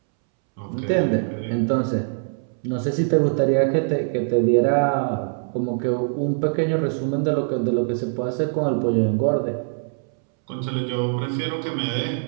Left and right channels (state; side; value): silent; left; 64 dB below the other